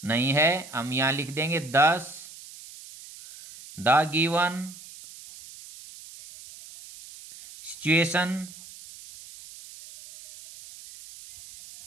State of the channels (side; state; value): right; noise; hiss, 17 dB below the sound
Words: नहीं है। हम यहां लिख देंगे 10 the given situation